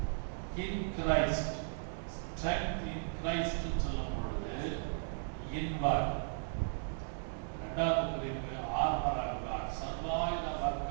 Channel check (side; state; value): left; silent; digital silence